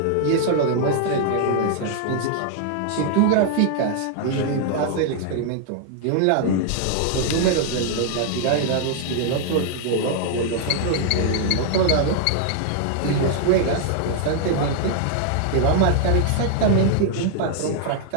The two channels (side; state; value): both; different; correlation 0.00